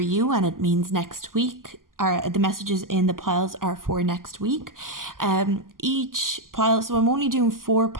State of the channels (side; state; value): left; late; 0.91 ms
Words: and it means next week. The messages in the piles are for next week. Each pile, so I'm only doing 4